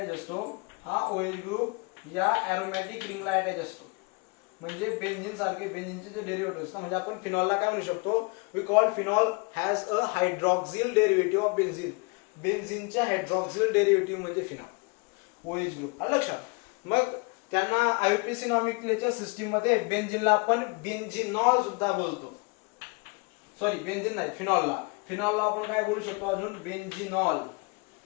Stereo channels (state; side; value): quieter; right; 30.0 dB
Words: असतो हा OH ग्रुप या एरोमॅटिक रिंगला अटॅच असतो. म्हणजे बेन्झीन सारखे बेन्झीनचे जे डेरिव्हेटिव्ह ना, म्हणजे आपण फिनॉलला काय म्हणू शकतो, we call phenol has a hydroxyl derivative of benzene. बेन्झीनच्या हायड्रॉक्सिल डेरिव्हेटिव्ह म्हणजे फिनॉल, OH ग्रुप. लक्षात. मग त्यांना आययुपीएसी नॉमेनक्लेचर सिस्टीम मध्ये बेन्झीनला आपण बेन्झिनॉल सुद्धा बोलतो. सॉरी, बेन्झीन नाही, फिनॉलला आपण काय बोलू शकतो अजून, बेन्झिनॉल.